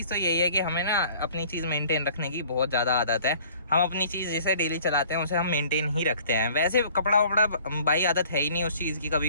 तो यही है कि हमें ना अपनी चीज मेंटेन रखने की बहुत ज्यादा आदत है। हम अपनी चीज जिसे डेली चलाते हैं उसे हम मेंटेन ही रखते हैं। वैसे कपड़ा वपड़ा भाई आदत है ही नहीं उस चीज की,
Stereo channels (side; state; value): both; inverted; correlation -0.53